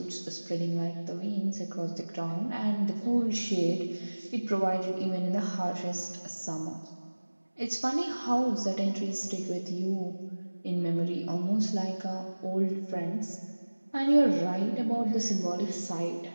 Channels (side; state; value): both; inverted; correlation -1.00